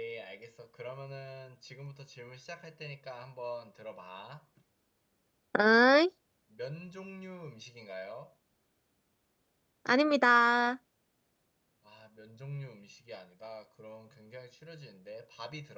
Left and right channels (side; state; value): both; identical; correlation 1.00